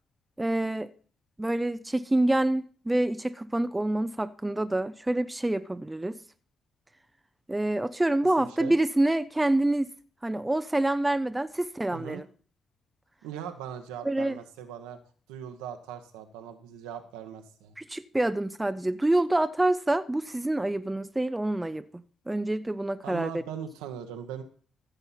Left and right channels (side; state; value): both; normal; correlation 0.98